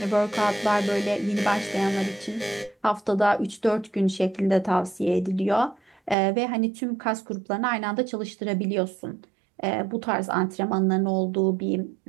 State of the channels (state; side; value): drops out; left; at 6.2 s